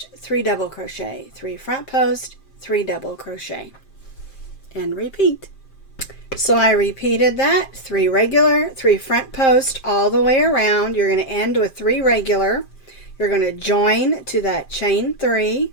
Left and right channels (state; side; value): late; right; 5.1 ms